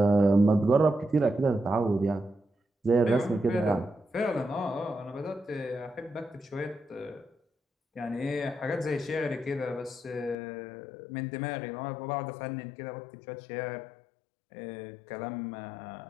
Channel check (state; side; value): drops out; right; at 10.4 s